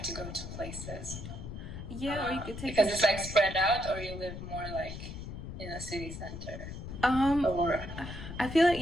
to go to places? Yeah, or you could take because it's like spread out, or you live more like in a city center. Or I feel like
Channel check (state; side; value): noise; left; rumble, 9 dB below the sound